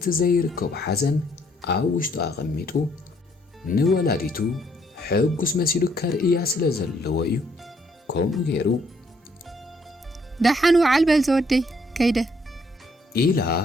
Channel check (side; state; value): both; normal; correlation 0.68